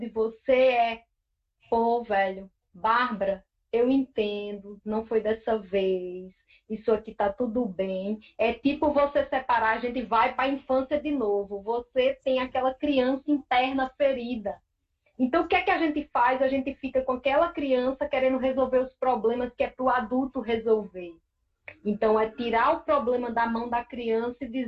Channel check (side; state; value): both; identical; correlation 1.00